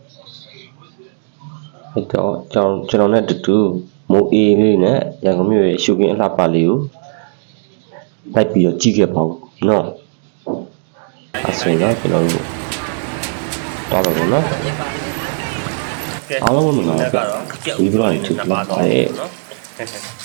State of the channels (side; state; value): left; silent; digital silence